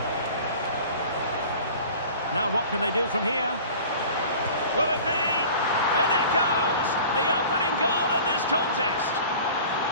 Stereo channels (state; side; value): inverted; both; correlation -0.42